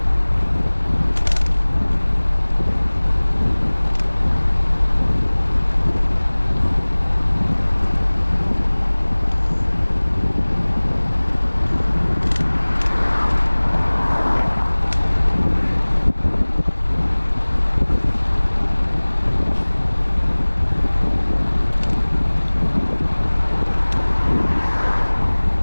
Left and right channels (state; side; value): inverted; both; correlation -1.00